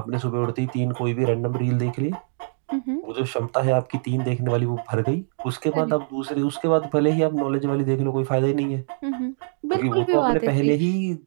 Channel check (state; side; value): silent; left; digital silence